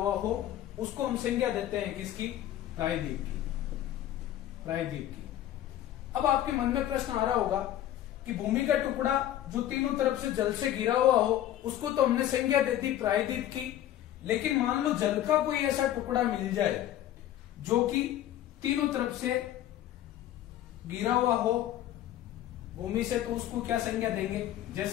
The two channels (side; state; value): right; quieter; 12.5 dB